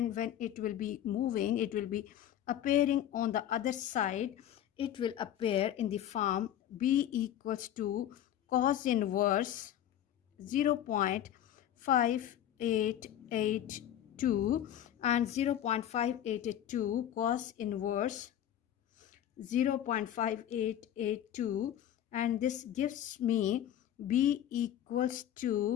when it will be moving, it will be appearing on the other side. It will appear in the form B equals to cos inverse 0.5882 and 0.5882 cos inverse 0.5882, and this gives me B equals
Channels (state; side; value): quieter; right; 11.1 dB